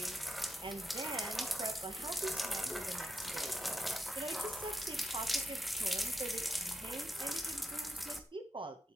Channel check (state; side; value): normal; both; correlation 0.84